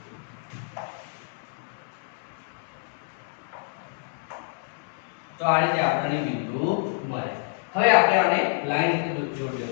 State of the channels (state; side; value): silent; right; digital silence